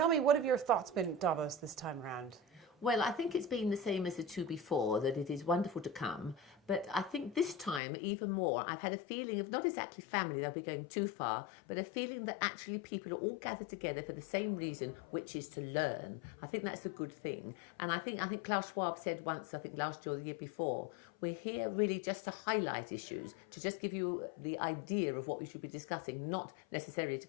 me, what have your thoughts been at Davos this time around? Well, I think it's been the same as the two before, that it is wonderful to come. But I think this time, even more, I've had a feeling of not exactly family, they'll be going too far, but a feeling that actually people are all gathered together for the same reason, which is to learn. I think that's a good thing. And I think Klaus Schwab said once, I think last year or the year before, we're here really just to highlight issues, to just give you the idea of what we should be discussing, not necessarily to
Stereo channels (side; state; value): right; drops out; at 7.8 s